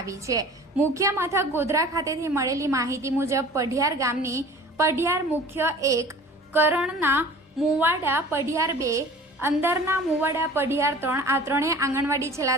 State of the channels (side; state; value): both; normal; correlation 0.44